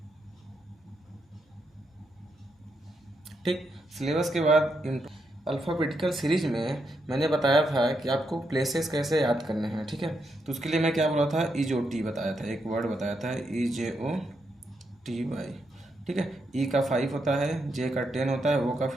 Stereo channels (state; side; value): normal; both; correlation 0.81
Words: ठीक, सिलेबस के बाद अल्फ़ाबेटिकल सीरीज में मैंने बताया था कि आपको प्लेसेस कैसे याद करने हैं। ठीक है, तो उसके लिए मैं क्या बोला था, EJOT बताया था, एक वर्ड बताया था EJOTY। ठीक है, E का 5 होता है, J का 10 होता है, O का